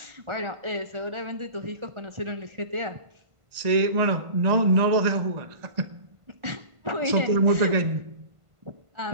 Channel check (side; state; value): left; late; 1.5 ms